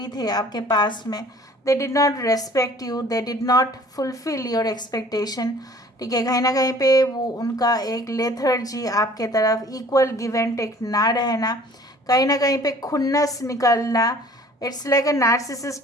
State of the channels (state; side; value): normal; both; correlation 0.51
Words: थे आपके पास में, they did not respect you, they did not fulfil your expectation. ठीक है, कहीं ना कहीं पे वो उनका एक लेथर्जी आपके तरफ, इक्वल गिव एंड टेक ना रहना, कहीं ना कहीं पे खुन्नस निकलना, it's like a